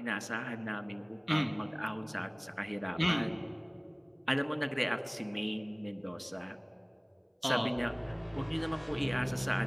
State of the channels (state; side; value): identical; both; correlation 1.00